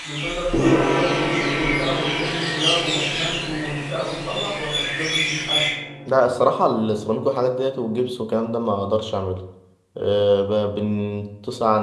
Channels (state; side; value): identical; both; correlation 1.00